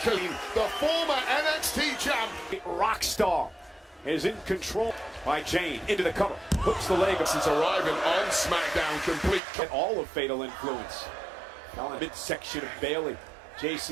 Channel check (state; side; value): drops out; left; at 9.4 s